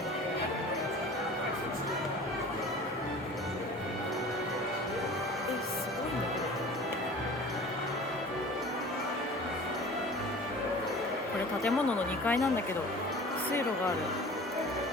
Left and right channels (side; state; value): both; normal; correlation 0.42